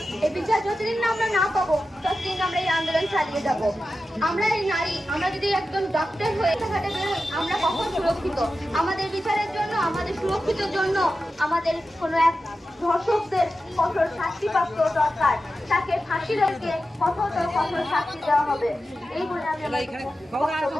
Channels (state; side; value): normal; both; correlation 0.92